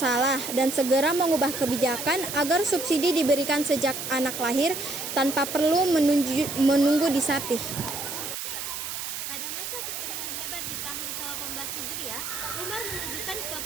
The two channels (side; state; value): right; noise; hiss, 5 dB below the sound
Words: dan segera mengubah kebijakan agar subsidi diberikan sejak anak lahir tanpa perlu menunggu disapih. Pada masa kekeringan hebat di tahun ke-18 Hijriah, Umar menunjukkan